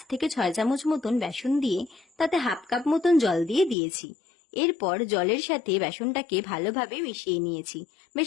থেকে 6 চামচ মতন বেসন দিয়ে তাতে হাফ কাপ মতন জল দিয়ে দিয়েছি। এরপর জলের সাথে বেসনটাকে ভালোভাবে মিশিয়ে নিয়েছি।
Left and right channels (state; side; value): drops out; right; at 3.8 s